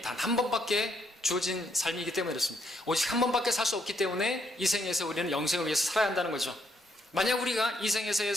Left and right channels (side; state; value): both; normal; correlation 0.73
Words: 단 한 번밖에 주어진 삶이기 때문에 그렇습니다. 오직 한 번밖에 살 수 없기 때문에 이 생에서 우리는 영생을 위해서 살아야 한다는 거죠. 만약 우리가 이 생에서의